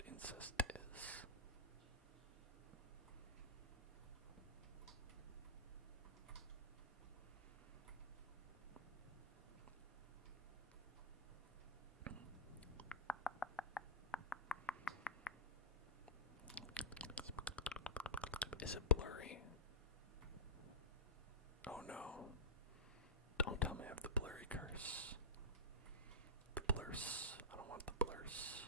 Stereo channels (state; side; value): normal; both; correlation -0.13